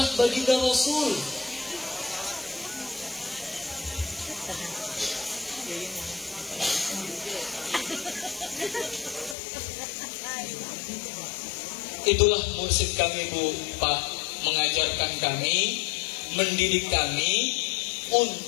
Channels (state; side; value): drops out; right; at 9.3 s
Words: baginda Rasul. Itulah mursyid kami Bu, Pak, mengajarkan kami, mendidik kami